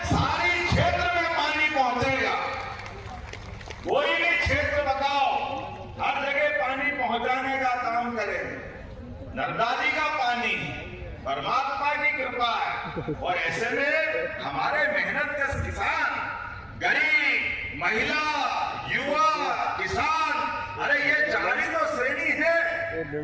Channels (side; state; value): both; identical; correlation 1.00